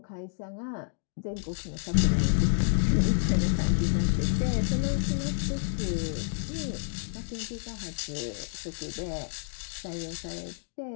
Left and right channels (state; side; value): silent; right; digital silence